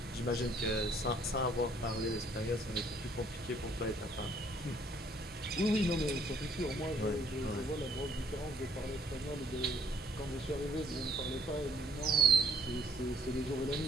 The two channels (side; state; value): both; normal; correlation 0.62